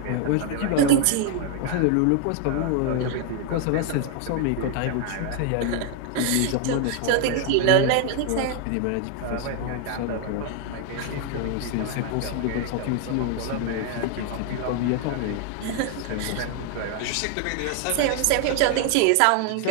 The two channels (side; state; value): both; different; correlation 0.00